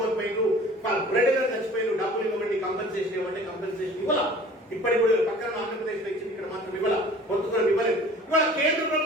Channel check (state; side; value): normal; both; correlation 0.47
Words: కోల్పోయినారు, బ్రెడ్ చచ్చిపోయినారు, డబ్బులు ఇవ్వండి, కంపెన్సేషన్ ఇవ్వండి. కంపెన్సేషన్ ఇవ్వాల. ఇప్పటికి కూడా పక్కన ఆంధ్రప్రదేశ్ లో ఇచ్చింది, ఇక్కడ మాత్రం ఇవ్వాల, కొంతమంది ఇవ్వలేదు. ఇవాళ కేంద్ర